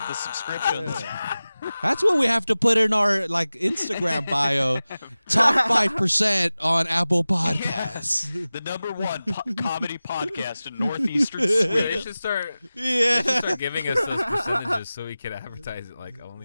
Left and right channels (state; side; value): inverted; both; correlation -0.96